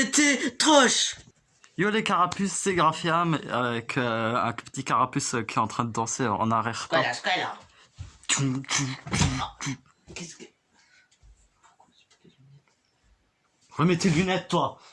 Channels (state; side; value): identical; both; correlation 1.00